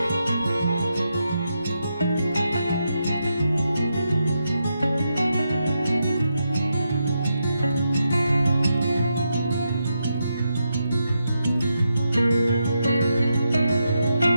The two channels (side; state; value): both; inverted; correlation -0.84